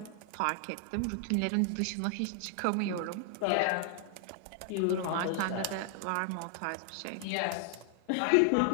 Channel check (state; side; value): different; both; correlation 0.00